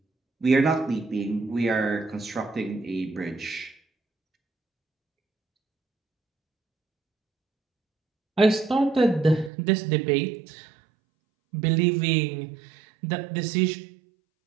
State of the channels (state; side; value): drops out; left; at 9.5 s